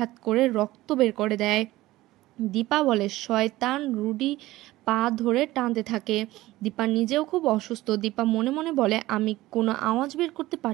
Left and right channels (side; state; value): left; quieter; 17.3 dB